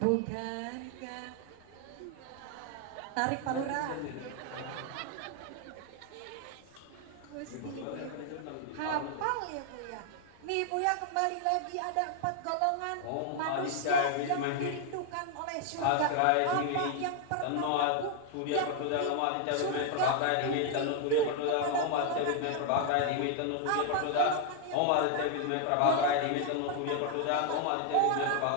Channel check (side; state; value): both; different; correlation 0.00